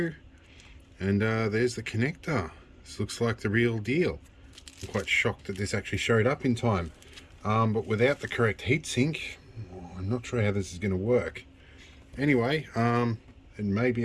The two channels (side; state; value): both; identical; correlation 1.00